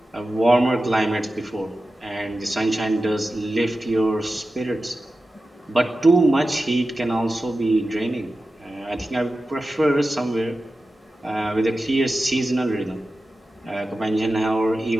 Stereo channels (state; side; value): normal; both; correlation 0.93